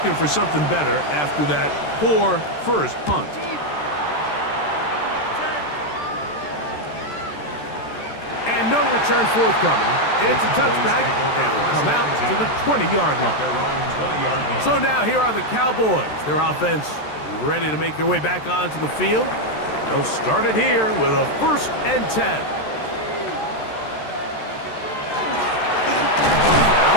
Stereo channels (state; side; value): late; right; 13 ms